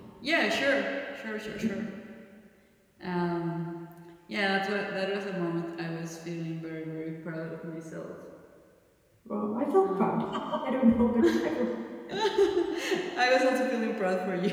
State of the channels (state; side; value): identical; both; correlation 1.00